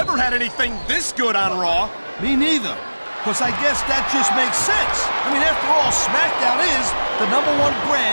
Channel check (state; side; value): inverted; both; correlation -1.00